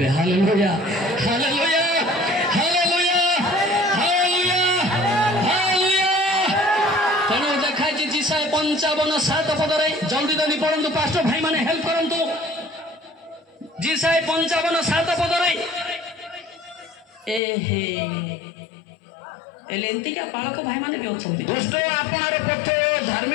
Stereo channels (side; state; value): right; drops out; at 17.4 s